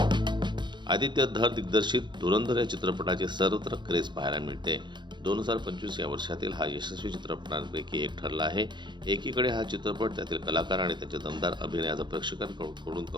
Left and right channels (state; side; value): late; left; 0.22 ms